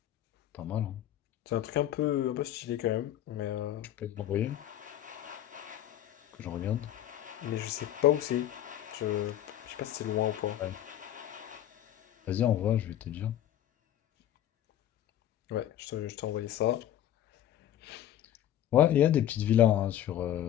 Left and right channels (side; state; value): right; quieter; 11.8 dB